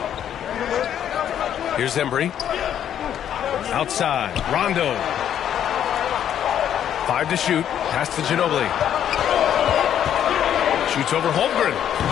Here's Embry. Outside. Rondo. 5 to shoot. Pass to Ginobili. Shoots over Holmgren.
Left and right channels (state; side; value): quieter; right; 9.9 dB